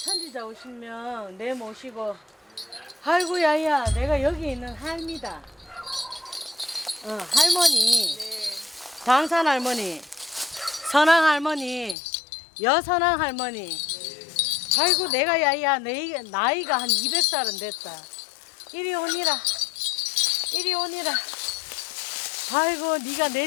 천지자 오시면 내 모시고, 아이고 야야, 내가 여기 있는 할미다. 할머니, 당산 할머니, 선왕 할머니, 여선왕 할머니. 아이고 내가 야야, 나이가 한 200살은 됐다. 이리 오니라, 이리 오니라. 아이고 네가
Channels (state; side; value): drops out; right; at 12.0 s